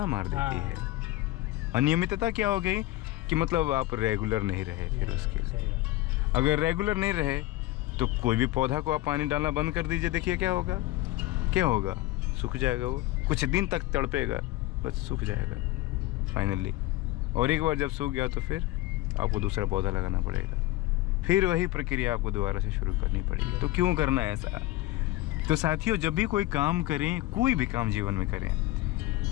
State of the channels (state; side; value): quieter; right; 17.1 dB